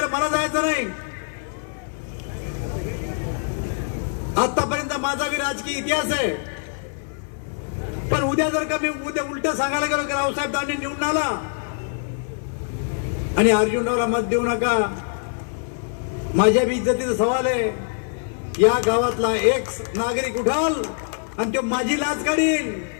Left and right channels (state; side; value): silent; right; 59 dB below the other